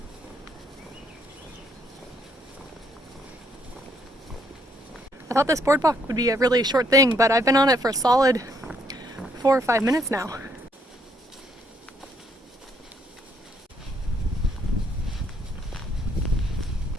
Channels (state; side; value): normal; both; correlation 0.70